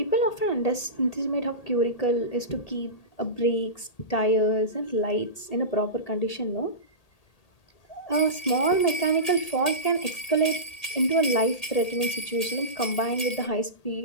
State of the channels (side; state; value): right; late; 1.8 ms